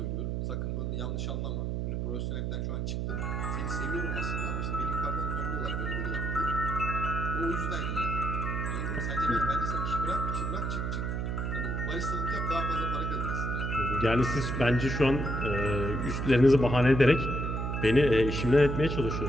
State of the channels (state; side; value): noise; right; hum, 1 dB below the sound